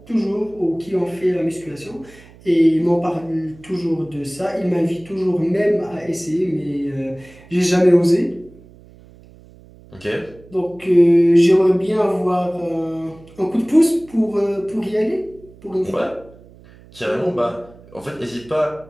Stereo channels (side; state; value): right; noise; hum, 24 dB below the sound